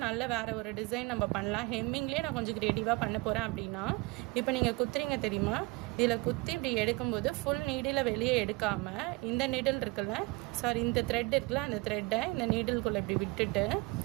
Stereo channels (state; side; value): quieter; left; 25.3 dB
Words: நல்ல வேறு ஒரு டிசைன் நம்ம பண்ணலாம். ஹெம்மிங்லேயே நான் கொஞ்சம் க்ரியேட்டிவாக பண்ண போகிறேன் அப்படின்னா, இப்போ நீங்கள் குத்துறீங்க தெரியுமா, இதில் குத்தி இப்படி எடுக்கும்போது ஃபுல் நீடில் வெளியே எடுக்காமல் இந்த நீடில் இருக்குல்ல, இந்த த்ரெட் இருக்குல்ல, அந்த த்ரெட்டை இந்த நீடில்குள்ளே இப்படி விட்டுட்டு